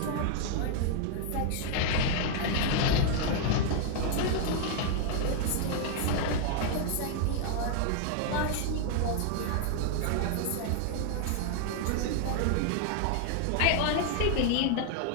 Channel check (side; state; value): both; different; correlation 0.00